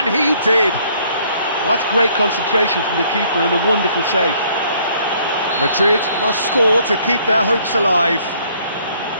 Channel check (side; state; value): both; inverted; correlation -0.62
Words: he did. Well, that's great concentration from the keeper and a wonderful save. Madrid must score to keep their hopes alive.